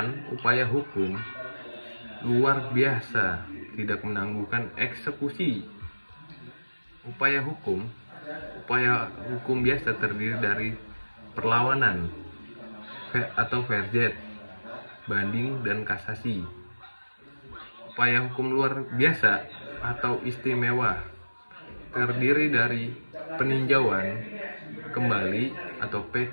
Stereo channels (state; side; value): inverted; both; correlation -1.00